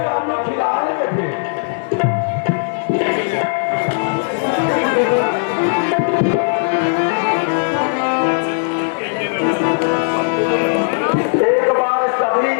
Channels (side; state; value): right; silent; digital silence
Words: खिलाएंगे फिर। एक बार सभी